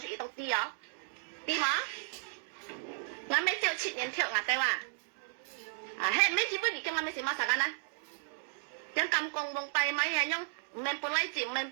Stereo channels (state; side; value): silent; left; digital silence